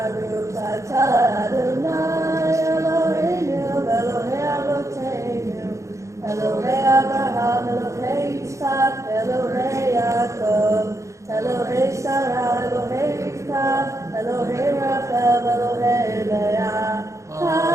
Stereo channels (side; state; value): left; late; 0.15 ms